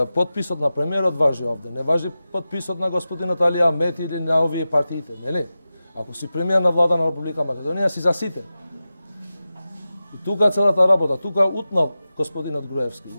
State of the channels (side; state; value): both; inverted; correlation -0.94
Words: потписот на премиерот важи овде, не важи потписот на господинот Али Ахмети или на овие партиите, нели? Ако си премиер на влада на Република Македонија, си за сите. И тука целата работа, тука утнал господинот Груевски.